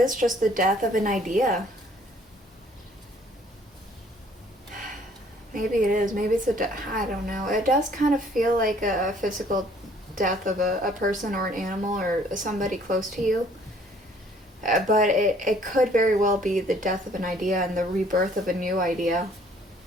just the death of an idea. Maybe it is. Maybe it's I don't know. It does kind of feel like a physical death of a person or an animal or somebody close to you. But it could very well be the death of an idea and the rebirth of a new idea.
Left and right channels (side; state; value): both; normal; correlation 0.59